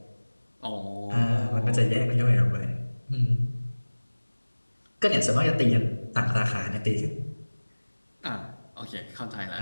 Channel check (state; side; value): inverted; both; correlation -1.00